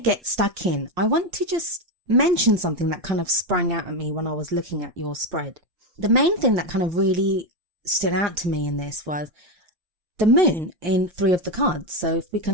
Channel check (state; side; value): late; left; 5.6 ms